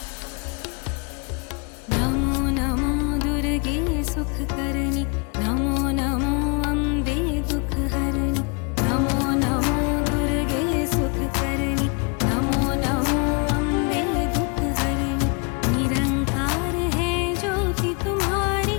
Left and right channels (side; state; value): right; quieter; 33.6 dB